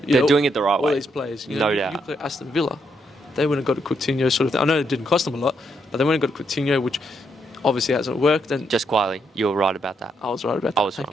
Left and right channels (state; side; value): normal; both; correlation 0.77